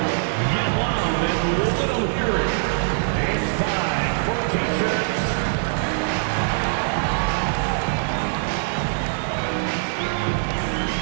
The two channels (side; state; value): left; silent; digital silence